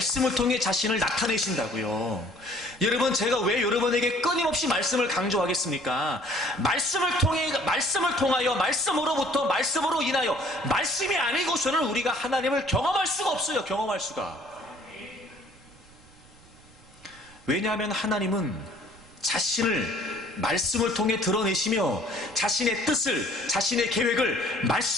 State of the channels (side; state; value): right; noise; rumble, 25 dB below the sound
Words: 통해 자신을 나타내신다고요. 여러분, 제가 왜 여러분에게 끊임없이 말씀을 강조하겠습니까? 말씀을 통하여, 말씀으로부터, 말씀으로 인하여, 말씀이 아니고서는 우리가 하나님을 경험할 수가 없어요. 경험할 수가. 왜냐하면 하나님은 자신을 말씀을 통해 드러내시며 자신의 뜻을, 자신의 계획을